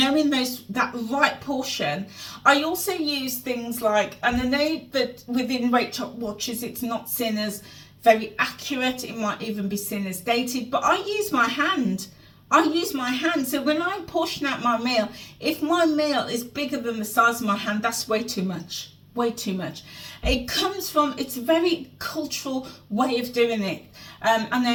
that right portion. I also use things like, and I know that within WeightWatchers it's not seen as very accurate, it might even be seen as dated, but I use my hand. So when I portion out my meal, if my meal is bigger than the size of my hand, that's way too much. It comes from, it's a very cultural way of doing it. I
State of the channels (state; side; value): identical; both; correlation 1.00